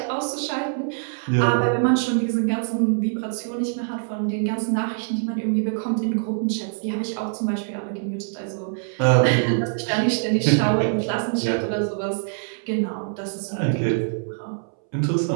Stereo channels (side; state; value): left; silent; 63 dB below the other